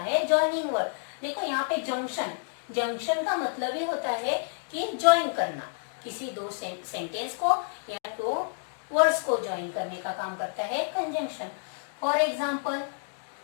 जॉइनिंग वर्ड। देखो यहाँ पे जंक्शन, जंक्शन का मतलब ही होता है कि ज्वाइन करना, किसी दो सेंटेंस को या दो वर्ड्स को ज्वाइन करने का काम करता है conjunction. For example,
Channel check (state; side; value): silent; right; digital silence